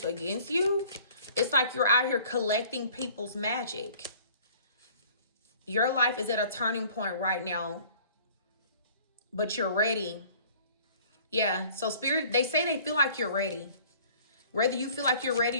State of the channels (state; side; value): inverted; both; correlation -0.52